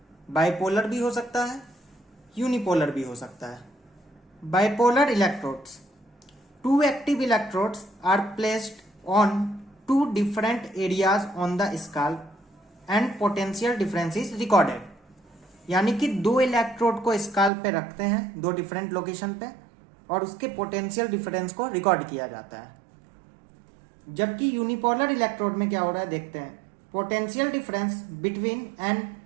बाइपोलर भी हो सकता है, यूनिपोलर भी हो सकता है। Bipolar electrodes, two active electrodes are placed on two different areas on the scalp and potential difference is recorded. यानी कि दो इलेक्ट्रोड को स्काल्प पे रखते हैं, दो डिफरेंट लोकेशन पे, और उसके पोटेंशियल डिफरेंस को रिकॉर्ड किया जाता है। जबकि यूनिपोलर इलेक्ट्रोड में क्या हो रहा है देखते हैं। Potential difference between an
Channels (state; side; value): drops out; left; at 17.5 s